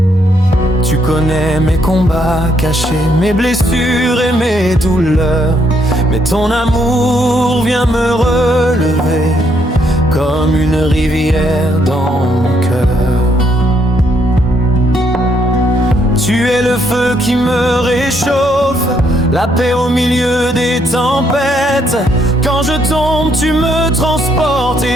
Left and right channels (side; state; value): both; normal; correlation 0.73